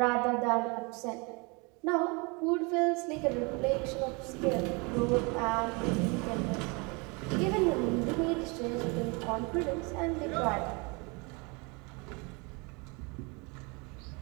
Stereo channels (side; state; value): left; quieter; 29.8 dB